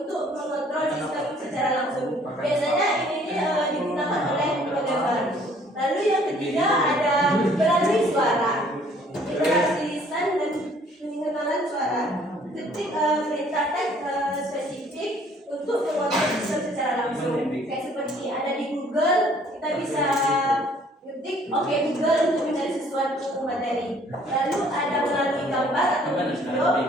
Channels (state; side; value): normal; both; correlation 0.59